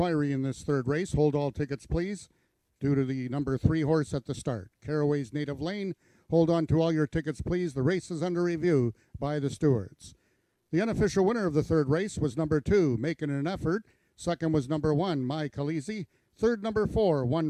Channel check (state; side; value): identical; both; correlation 1.00